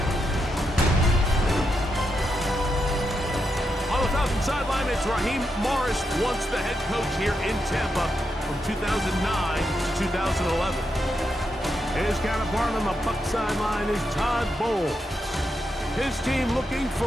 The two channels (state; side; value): normal; both; correlation 0.83